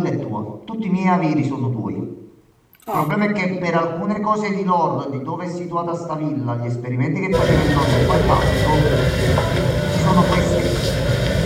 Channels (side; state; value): both; identical; correlation 1.00